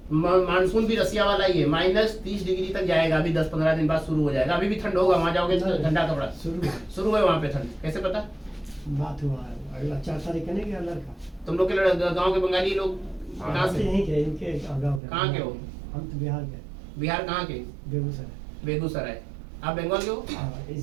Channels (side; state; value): left; drops out; at 15.0 s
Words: मानसून भी रसिया वाला ही है, -30 डिग्री तक जाएगा, अभी 10-15 दिन बाद शुरू हो जाएगा। अभी भी ठंड होगा, वहाँ जाओगे तो ठंडा कपड़ा शुरू है वहाँ पे ठंड, कैसे पता? बात हुआ है, अगला 4 तारीख का नहीं गया लड़का। तुम लोग के गाँव के बंगाली लोग कहाँ से? यहीं के, इनके गाँव के। कहाँ के हो? हम तो बिहार के। बिहार कहाँ के? बेगूसराय। बेगूसराय। आप बंगाल के हो? हाँ,